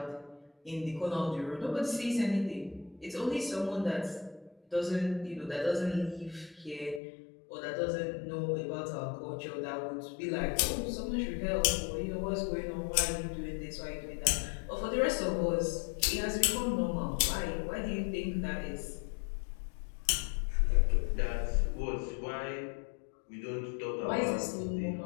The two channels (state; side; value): drops out; right; at 7.0 s